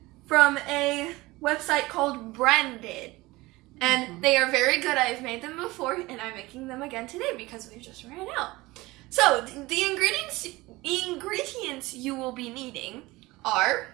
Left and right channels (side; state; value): left; quieter; 20.6 dB